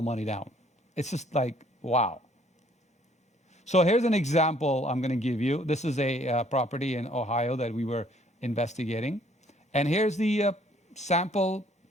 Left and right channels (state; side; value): normal; both; correlation 0.62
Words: money down. It's just like, wow. So here's an example I'm going to give you. This is a property in Ohio that we were investigating. And here's the sample